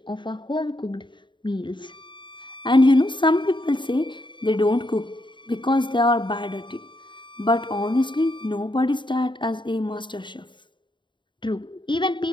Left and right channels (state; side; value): late; right; 0.23 ms